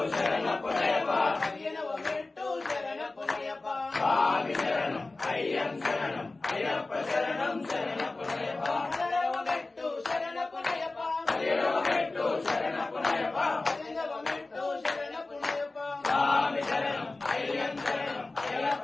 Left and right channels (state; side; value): quieter; right; 3.3 dB